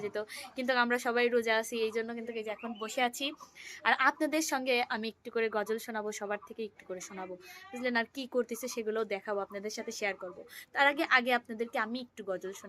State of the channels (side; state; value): both; identical; correlation 1.00